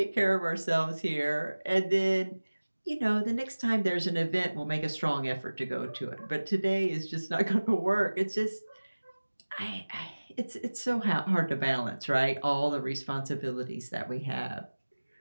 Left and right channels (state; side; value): inverted; both; correlation -1.00